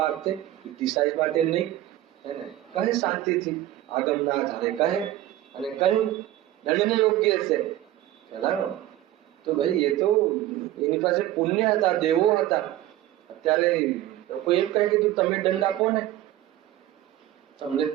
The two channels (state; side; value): quieter; left; 14.1 dB